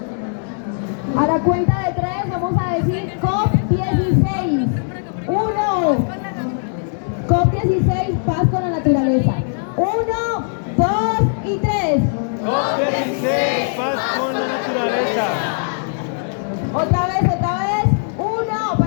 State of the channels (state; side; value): silent; right; digital silence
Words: A la cuenta de 3 vamos a decir COP16. 1. COP16, paz con la naturaleza. 1, 2 y 3. COP16, paz con la naturaleza. Otra vez. 1,